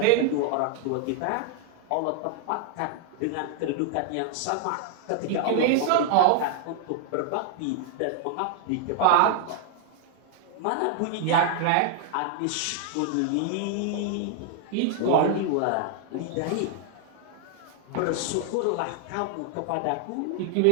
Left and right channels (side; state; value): both; different; correlation 0.00